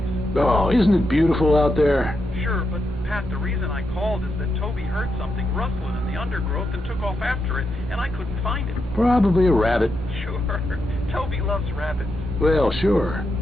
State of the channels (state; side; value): normal; both; correlation 0.84